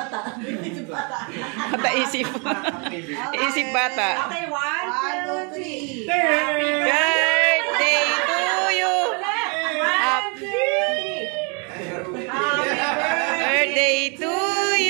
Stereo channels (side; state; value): left; quieter; 34.3 dB